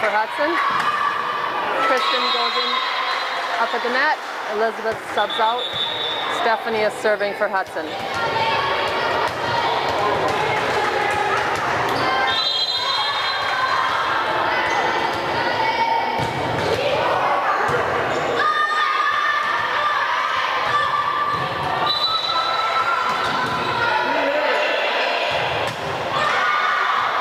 Hudson. Kristen goes in up at the net. Elizabeth subs out. Stephanie is serving for Hudson.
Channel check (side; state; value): both; identical; correlation 1.00